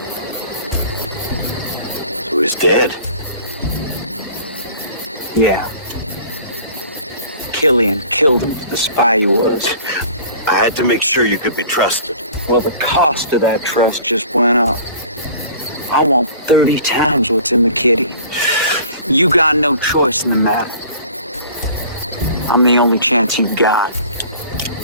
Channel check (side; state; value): both; inverted; correlation -0.47